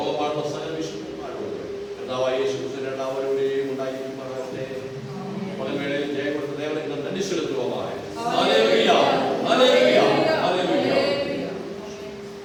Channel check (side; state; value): both; identical; correlation 1.00